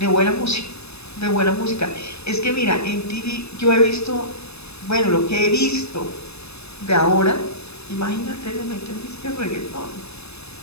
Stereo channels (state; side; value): late; right; 0.79 ms